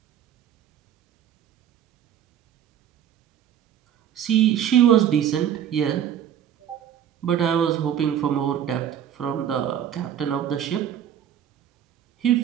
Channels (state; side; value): quieter; left; 9.9 dB